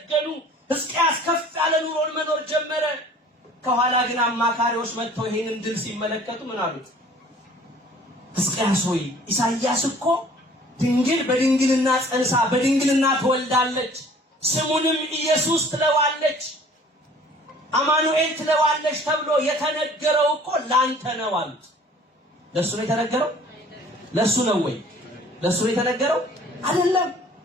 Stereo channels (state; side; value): normal; both; correlation 0.52